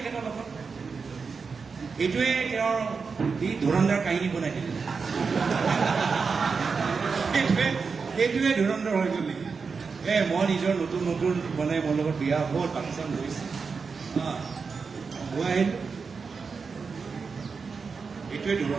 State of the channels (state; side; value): quieter; left; 5.1 dB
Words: লগত। এইটোৱে তেওঁৰ ধুৰন্ধৰ কাহিনী বনাই দিলে। এইটোৱে ধুৰন্ধৰ হৈ গ'ল নেকি? মই নিজৰ নতুন মানে মোৰ লগত বিয়া হ'ল, পাকিস্তান গৈছে, গৈ আহিলোঁ, এইটোৱে